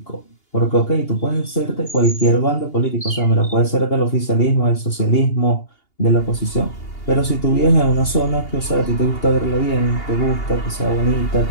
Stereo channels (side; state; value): right; late; 2.8 ms